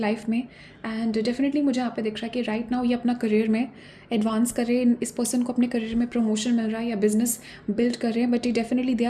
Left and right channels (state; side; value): identical; both; correlation 1.00